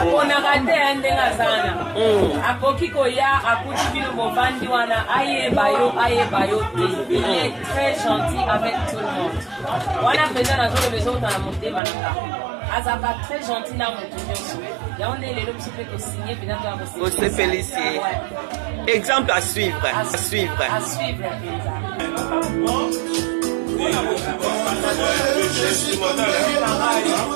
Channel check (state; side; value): drops out; left; at 11.8 s